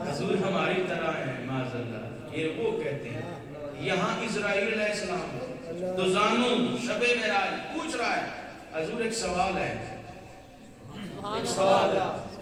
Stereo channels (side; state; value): both; identical; correlation 1.00